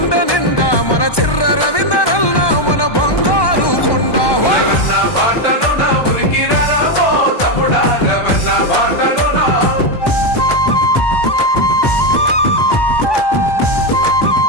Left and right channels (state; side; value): late; right; 1.1 ms